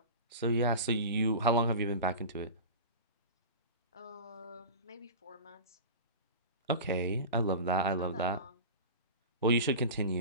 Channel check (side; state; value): both; inverted; correlation -0.31